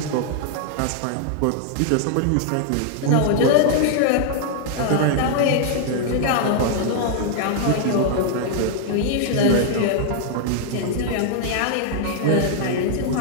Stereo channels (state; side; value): different; both; correlation -0.01